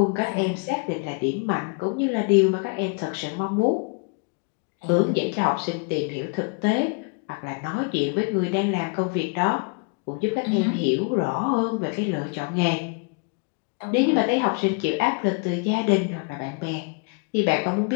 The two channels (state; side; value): quieter; right; 32.9 dB